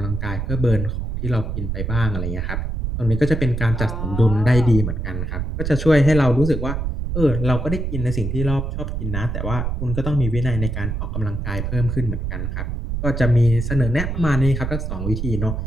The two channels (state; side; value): noise; right; rumble, 3 dB below the sound